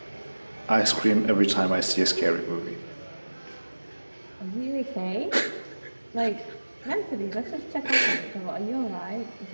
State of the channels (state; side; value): inverted; both; correlation -1.00